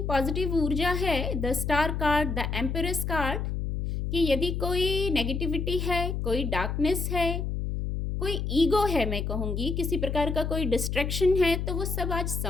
पॉजिटिव ऊर्जा है। The star card, the empress card, कि यदि कोई नेगेटिविटी है, कोई डार्कनेस है, कोई ईगो है, मैं कहूँगी किसी प्रकार का कोई डिस्ट्रैक्शन है, तो वो सब आज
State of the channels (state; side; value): noise; left; hum, 2 dB below the sound